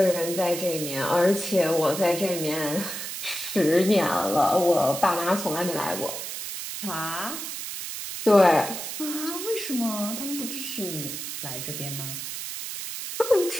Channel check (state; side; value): noise; right; hiss, 6 dB below the sound